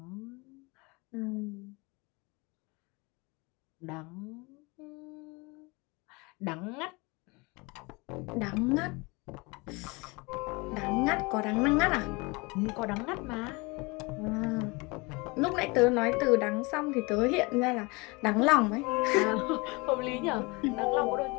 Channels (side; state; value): right; quieter; 26.7 dB